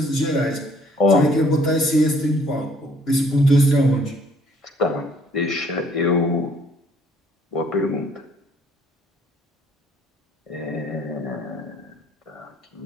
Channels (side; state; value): both; normal; correlation 0.61